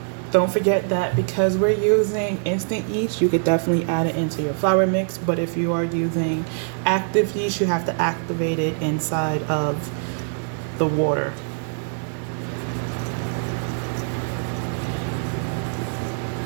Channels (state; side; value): silent; left; 63 dB below the other